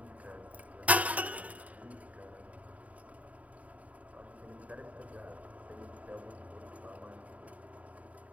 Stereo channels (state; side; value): late; left; 0.069 ms